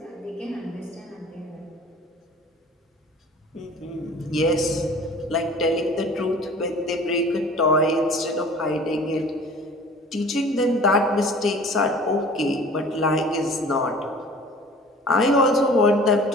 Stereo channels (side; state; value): both; normal; correlation 0.46